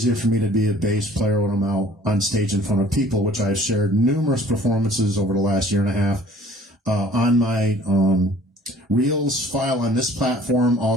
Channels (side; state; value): both; normal; correlation 0.52